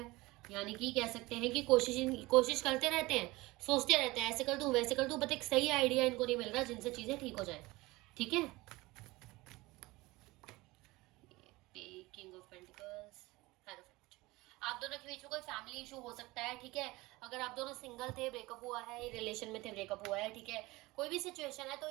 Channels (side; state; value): left; quieter; 21.1 dB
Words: यानी कि कह सकते हैं कि कोशिश करते रहते हैं, सोचते रहते हैं, ऐसे कर दूं वैसे कर दूं, बट एक सही आइडिया इनको नहीं मिल रहा जिनसे चीज़ें ठीक हो जाए, ठीक है। किंग ऑफ पेंटिकल्स, आप दोनों के बीच में कोई फैमिली इशू हो सकता है, ठीक है। अगर आप दोनों सिंगल थे, ब्रेकअप हुआ है, रिलेशन में थे, ब्रेकअप हुआ है, ठीक है, कोई भी सिचुएशन है, तो